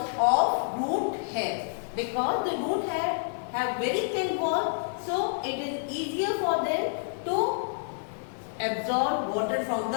of root hair. Because the root hair have very thin walls, so it is easier for them to absorb water from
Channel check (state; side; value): silent; right; 59 dB below the other